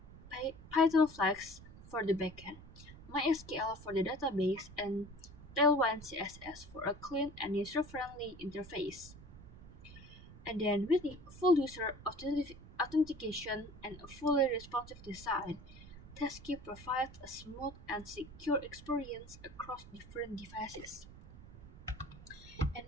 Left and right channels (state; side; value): noise; right; rumble, 17 dB below the sound